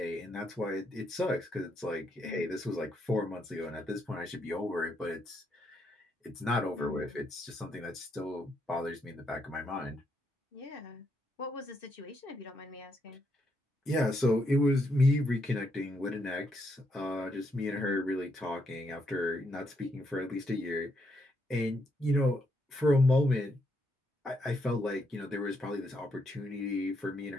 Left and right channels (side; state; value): both; normal; correlation 0.77